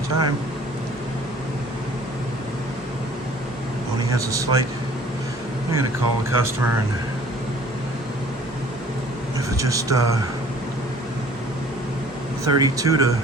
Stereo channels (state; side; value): normal; both; correlation 0.52